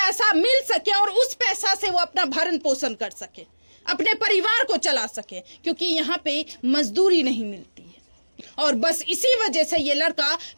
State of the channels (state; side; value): inverted; both; correlation -1.00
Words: मिल सके और उस पैसा से वो अपना भरण पोषण कर सके, अपने परिवार को चला सके, क्योंकि यहाँ पे मजदूरी नहीं मिलती है। और बस इसी वजह से ये लड़का